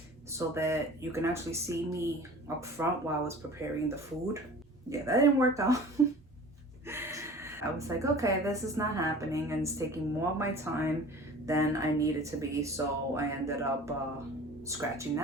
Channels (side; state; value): both; normal; correlation 0.42